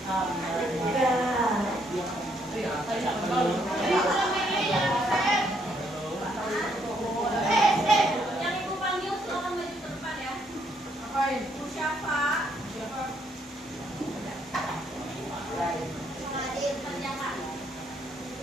Yang ibu panggil silakan maju ke depan ya. Apain? Bu Syafa. Siapa? Saladin, kerjakan.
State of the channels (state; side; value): normal; both; correlation 0.71